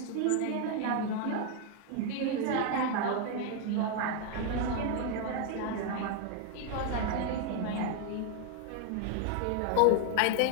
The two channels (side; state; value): both; different; correlation 0.01